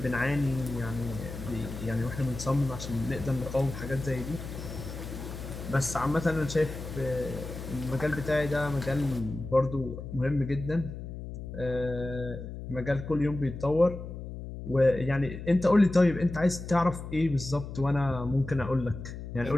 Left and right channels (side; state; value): left; noise; hum, 9 dB below the sound